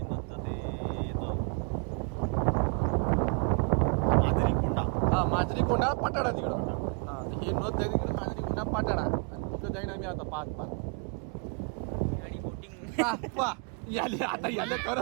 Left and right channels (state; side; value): quieter; left; 36.3 dB